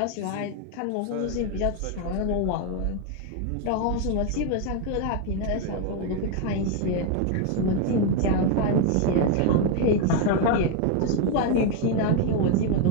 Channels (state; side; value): different; both; correlation 0.01